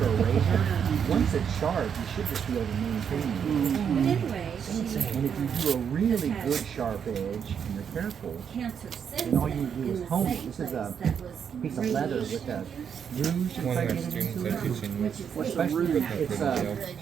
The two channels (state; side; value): quieter; left; 7.6 dB